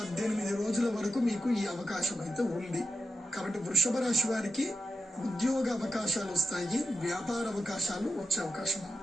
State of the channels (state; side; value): normal; both; correlation 0.88